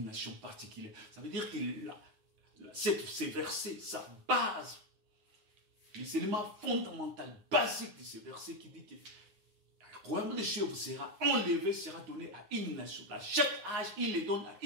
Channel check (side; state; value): left; late; 9.6 ms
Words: nation particulière. Ça veut dire qu'il a ces versets, sa base, les éléments fondamentaux, basiques de ces versets qui dit que le royaume des cieux vous sera enlevé, sera donné à une nation. À chaque âge, il les donne à